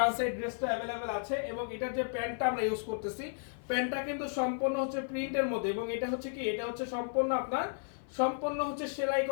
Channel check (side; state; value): right; silent; 55 dB below the other